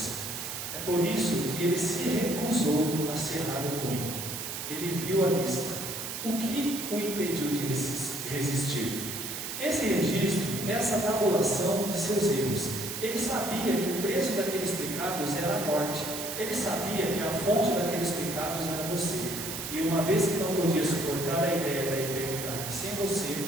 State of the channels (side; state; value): right; noise; hiss, 6 dB below the sound